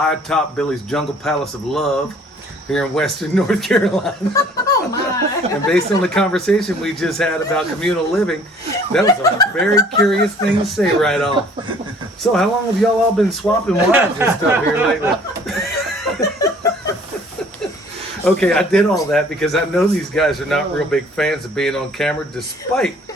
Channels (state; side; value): normal; both; correlation 0.55